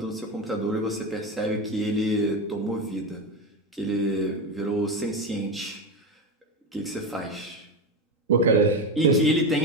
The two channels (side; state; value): both; normal; correlation 0.17